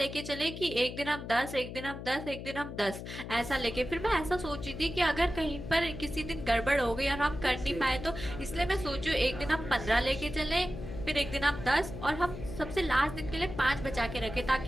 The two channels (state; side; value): noise; left; hum, 9 dB below the sound